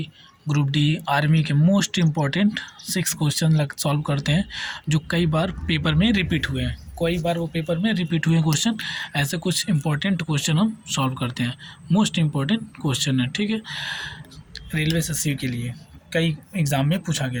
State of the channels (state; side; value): identical; both; correlation 1.00